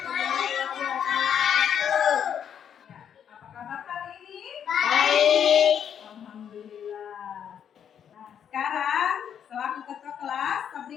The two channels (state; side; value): quieter; right; 8.6 dB